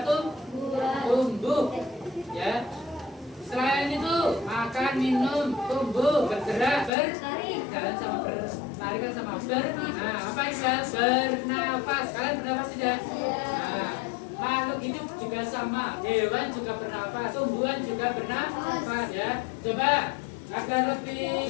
tumbuh. Ya. Selain itu, makan, minum, tumbuh, bergerak, berjalan sama berlari kan sama nah, apa itu? Bernafas. Kalian bernafas tidak? Nah, makhluk hidup juga sama. Hewan juga bernafas, tumbuhan juga bernafas ya. Coba agar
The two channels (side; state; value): right; drops out; at 6.9 s